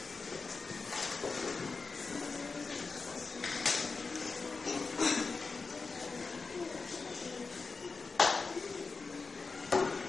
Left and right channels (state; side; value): quieter; right; 4.3 dB